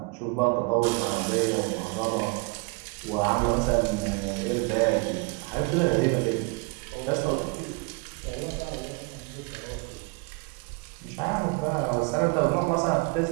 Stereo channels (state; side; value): quieter; left; 28.3 dB